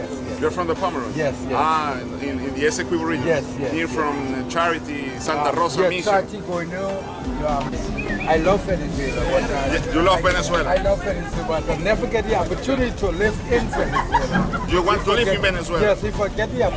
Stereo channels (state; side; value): identical; both; correlation 1.00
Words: yes. You're from the Pomeroon? Yes, yes. Ah, in the Esequibo region? Yes, yes. Near from Charity, Santa Rosa yes, Mission? Charity, I love Venezuela. You love Venezuela? I love Venezuela, but I never get the opportunity to live in Venezuela. You want to live in Venezuela? Yes, if I get the